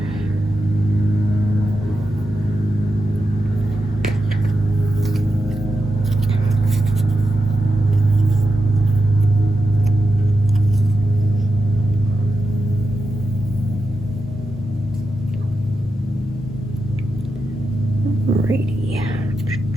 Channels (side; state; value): both; normal; correlation 0.88